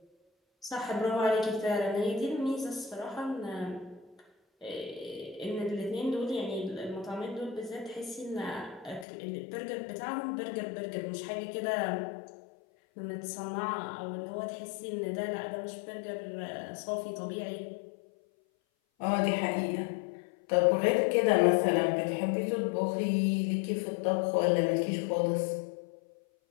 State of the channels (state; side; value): drops out; right; at 9.1 s